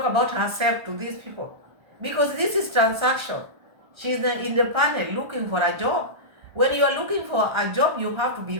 about herself to these people. Because this is transaction. She's in the panel looking for a job. When you are looking for a job, you have to be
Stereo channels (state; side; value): late; left; 1.3 ms